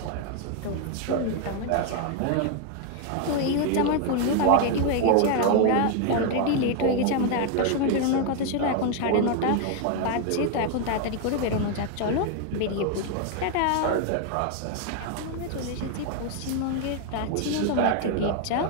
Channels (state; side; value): different; both; correlation 0.01